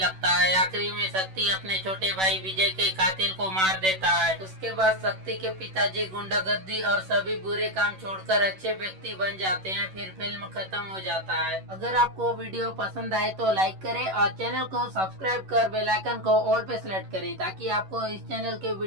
है। आखिरी में शक्ति अपने छोटे भाई विजय के कातिल को मार देता है। उसके बाद शक्ति के पिताजी गुंडागर्दी और सभी बुरे काम छोड़कर अच्छे व्यक्ति बन जाते हैं। फिर फिल्म खत्म हो जाता है। अगर आपको वीडियो पसंद आए तो लाइक करें और चैनल को सब्सक्राइब कर बेल आइकन को ऑल पे सेलेक्ट करें ताकि आपको इस चैनल के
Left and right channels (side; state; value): left; late; 11 ms